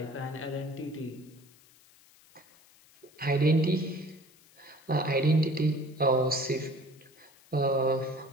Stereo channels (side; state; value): left; noise; hiss, 27 dB below the sound